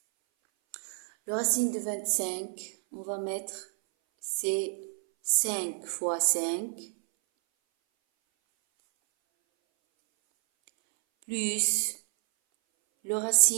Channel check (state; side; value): silent; left; 58 dB below the other